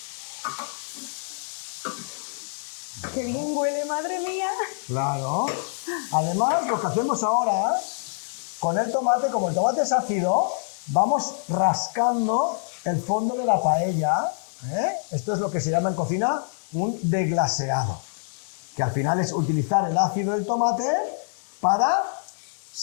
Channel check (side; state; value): right; silent; digital silence